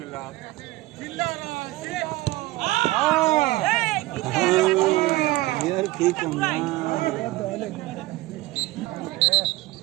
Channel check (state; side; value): quieter; left; 18.7 dB